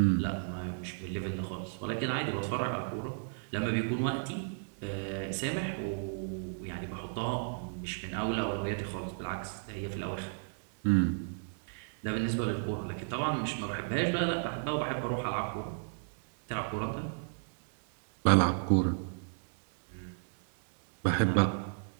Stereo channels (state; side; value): silent; left; digital silence